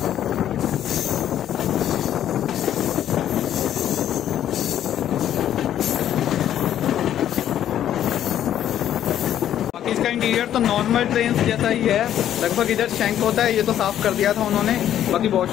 इसका इंटीरियर तो नॉर्मल ट्रेन जैसा ही है लगभग। इधर शैंक होता है, ये तो साफ कर दिया था उन्होंने। बाकी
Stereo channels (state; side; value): quieter; right; 11.0 dB